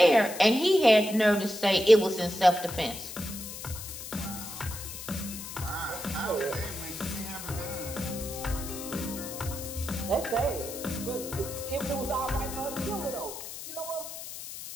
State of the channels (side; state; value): left; noise; hiss, 10 dB below the sound